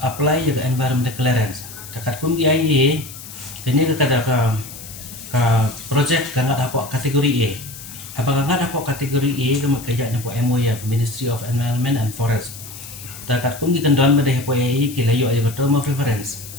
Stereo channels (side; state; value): left; noise; hiss, 14 dB below the sound